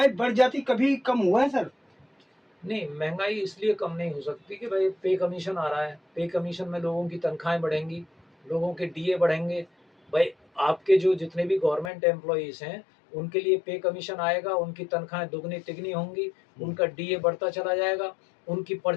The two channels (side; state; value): right; drops out; at 11.9 s